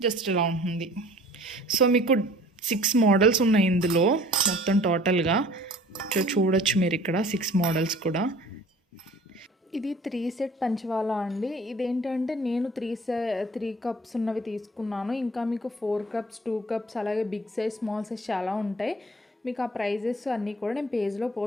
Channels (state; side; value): normal; both; correlation 0.49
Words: జస్ట్ ఇలా ఉంటుంది. సో మీకు 6 మోడల్స్ ఉన్నాయి ఇందులో మొత్తం టోటల్గా. చూడొచ్చు మీరు ఇక్కడ 6 మోడల్స్ కూడా. ఇది 3 సెట్ పంచవాలా అండి. ఇదేంటంటే నేను 3 కప్స్ ఉన్నవి తీసుకున్నాను. ఇంకా మీకు 4 కప్స్, 2 కప్స్, అలాగే బిగ్ సైజ్, స్మాల్ సైజ్ చాలా ఉంటాయి. మీకు ఆ ప్రైజెస్ అన్నీ కూడా నేను పేజ్లో